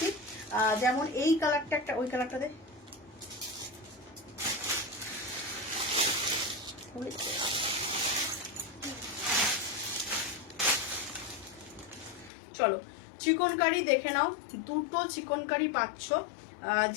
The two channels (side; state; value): right; drops out; at 12.3 s